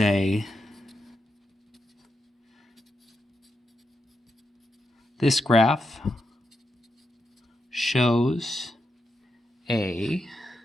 this graph shows a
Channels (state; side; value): normal; both; correlation 0.85